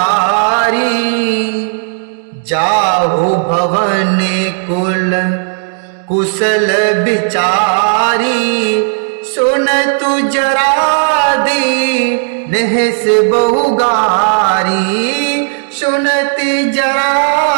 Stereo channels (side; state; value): left; silent; digital silence